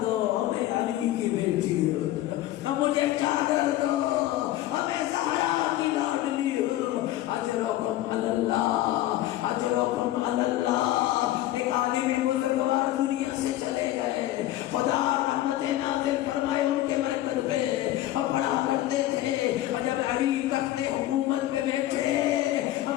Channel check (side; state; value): right; quieter; 14.6 dB